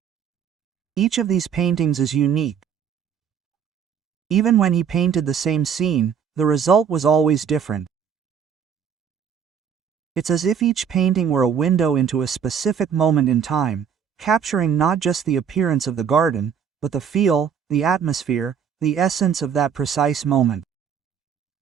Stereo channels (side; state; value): left; quieter; 7.6 dB